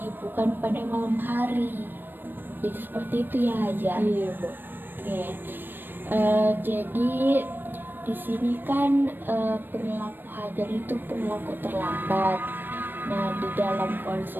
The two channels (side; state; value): left; late; 0.094 ms